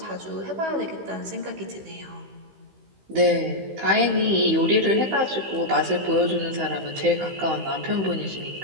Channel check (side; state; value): left; late; 15 ms